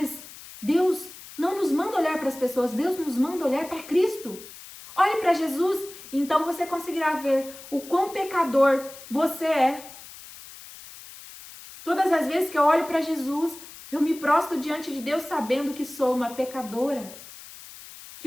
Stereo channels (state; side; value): noise; left; hiss, 17 dB below the sound